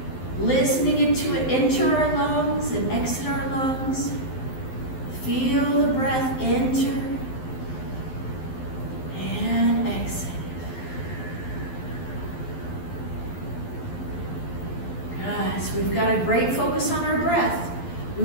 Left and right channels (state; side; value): late; right; 12 ms